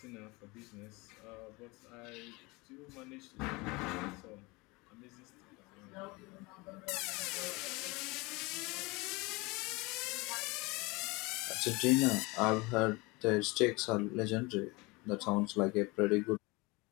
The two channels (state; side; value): quieter; right; 24.8 dB